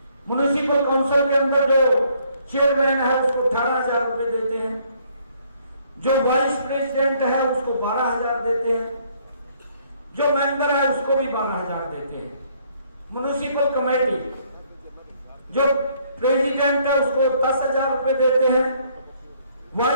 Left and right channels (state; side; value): inverted; both; correlation -0.66